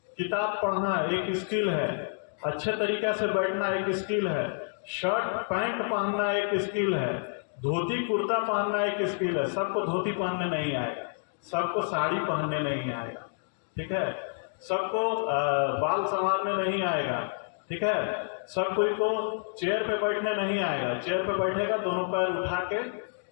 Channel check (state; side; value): silent; right; digital silence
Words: किताब पढ़ना एक स्किल है, अच्छे तरीक़े से बैठना एक स्किल है, शर्ट पैंट पहनना एक स्किल है, धोती कुर्ता पहनना एक स्किल है। सबको धोती पहनने नहीं आएगा, सबको साड़ी पहनने नहीं आएगा, ठीक है, सबको बाल संवारने नहीं आएगा, ठीक है, सब कोई को चेयर पे बैठने नहीं आएगा। चेयर पे बैठेगा दोनों पैर उठा के